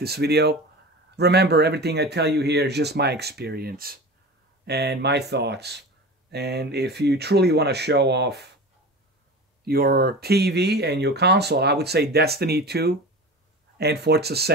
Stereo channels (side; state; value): both; normal; correlation 0.32